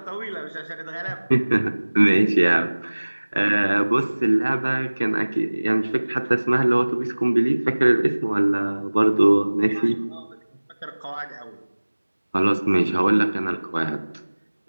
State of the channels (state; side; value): inverted; both; correlation -1.00